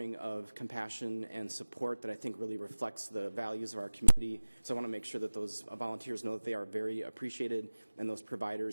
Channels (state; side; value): inverted; both; correlation -1.00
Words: of compassion and support that I think really reflects the values of our community. So I want to make sure that those volunteers know that they are very appreciated, and those